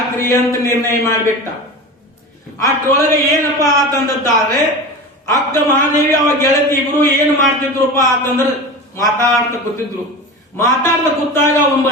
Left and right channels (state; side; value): normal; both; correlation 0.29